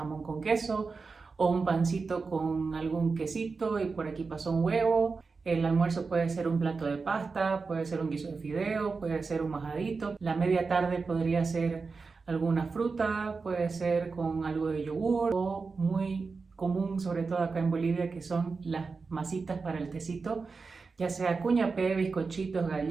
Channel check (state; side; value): quieter; left; 4.5 dB